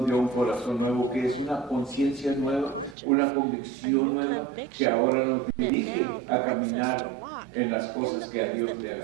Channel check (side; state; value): left; drops out; at 3.0 s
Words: dio un corazón nuevo, que es una conciencia nueva, una convicción nueva, que ahora nos dirige a caminar en las cosas que a Dios le